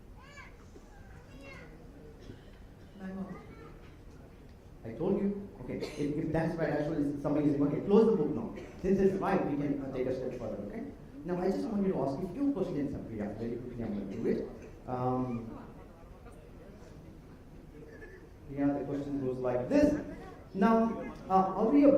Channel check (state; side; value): identical; both; correlation 1.00